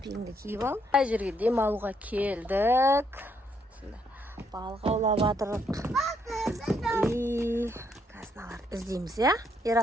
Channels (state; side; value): normal; both; correlation 0.74